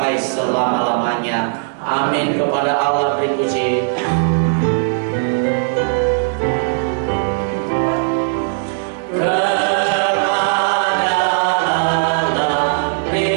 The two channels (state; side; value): silent; left; 61 dB below the other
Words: selama-lamanya. Amin. Kepada Allah beri puji.